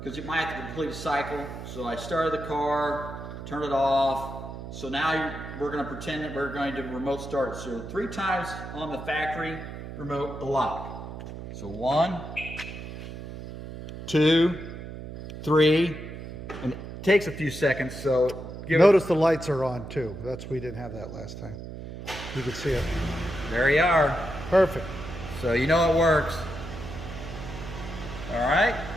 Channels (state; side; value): noise; right; hum, 10 dB below the sound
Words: you might have to complete a cycle. So I started the car, turned it off. So now we're gonna pretend that we're going to remote start. So 3 times on the factory remote, the lock. So 1, 2, 3, and it takes a few seconds, so Notice the lights are on too. We didn't have that last time. You can see it. There you are. Perfect. So you know it works. All right.